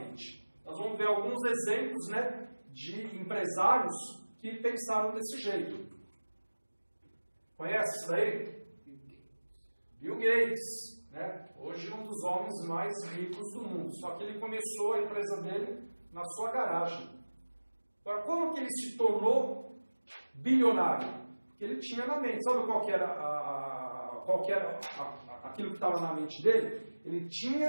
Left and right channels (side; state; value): both; inverted; correlation -1.00